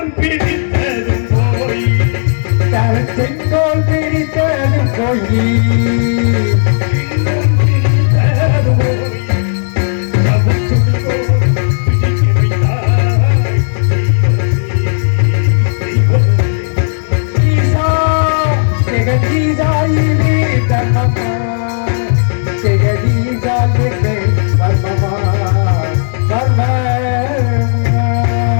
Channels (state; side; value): silent; right; digital silence